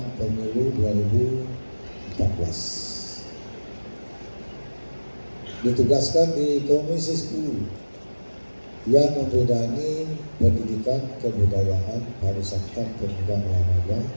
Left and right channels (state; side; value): inverted; both; correlation -1.00